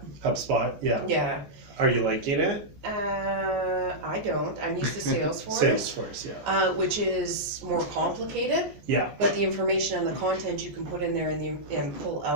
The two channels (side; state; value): left; late; 14 ms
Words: HubSpot. Yeah. Yeah. Are you liking it? I don't. I'm used to Salesforce. Salesforce. Yeah. Which is more complicated. Yeah. But the information and the content you can put in there and pull